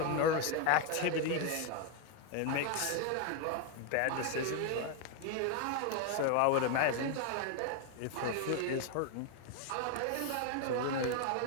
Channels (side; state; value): both; different; correlation 0.01